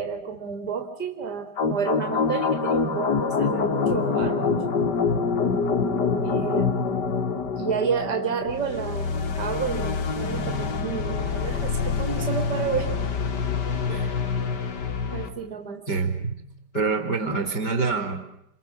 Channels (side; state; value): right; late; 5.1 ms